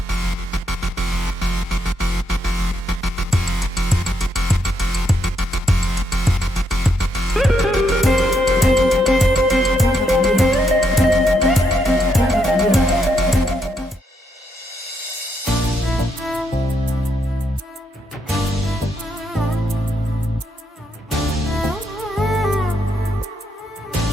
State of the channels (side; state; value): both; normal; correlation 0.78